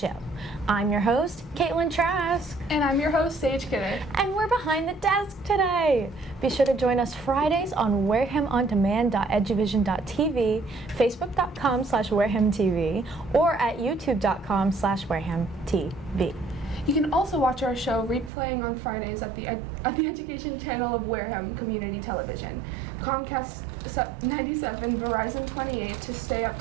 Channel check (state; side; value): drops out; left; at 18.3 s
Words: I'm your host, Caitlin Trask. And I'm your host, Sage Kidder. And we're behind the desk today. Be sure to join us Fridays on warehamondemand.eduvision.tv, facebook.com/warehamtv, or at youtube.com/warehamtv. You can also watch our show replaying on Fridays at the education channel of Wareham Community Television, Comcast 97, Verizon 28 to stay up